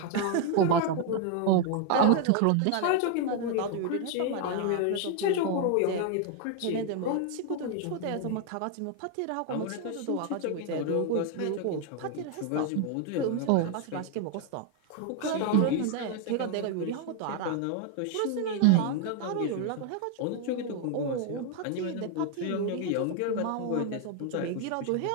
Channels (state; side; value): different; both; correlation 0.00